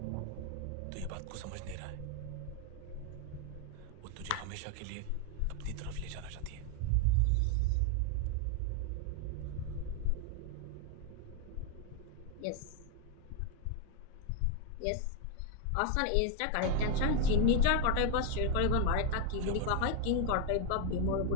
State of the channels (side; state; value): both; different; correlation 0.01